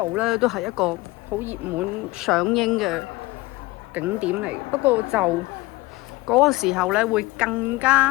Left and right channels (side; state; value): right; quieter; 21.1 dB